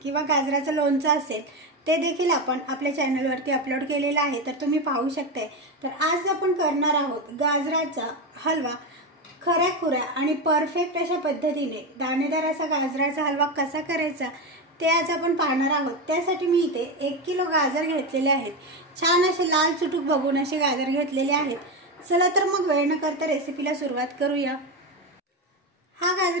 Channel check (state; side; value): normal; both; correlation 0.15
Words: किंवा गाजराचं लोणचं असेल ते देखील आपण आपल्या चॅनलवरती अपलोड केलेला आहे, तर तुम्ही पाहू शकता। तर आज आपण करणार आहोत गाजराचा हलवा। खऱ्याखुऱ्या आणि परफेक्ट अशा पद्धतीने दाणेदार असा गाजराचा हलवा कसा करायचा ते आज आपण पाहणार आहोत। त्यासाठी मी इथे 1 किलो गाजर घेतलेले आहेत। छान असे लाल चुटूक बघून असे गाजर घेतलेले आहेत। चला तर मग वेळ न करता रेसिपीला सुरुवात करूया। हा